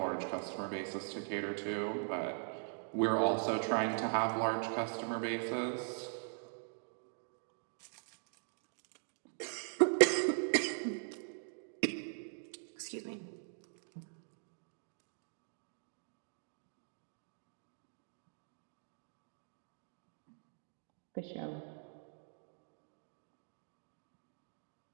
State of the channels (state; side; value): silent; left; digital silence